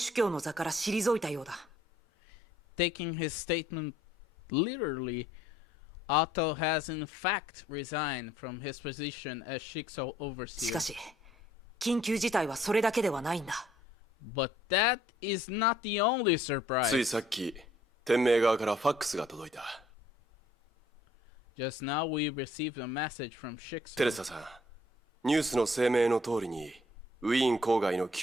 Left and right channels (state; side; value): normal; both; correlation 0.62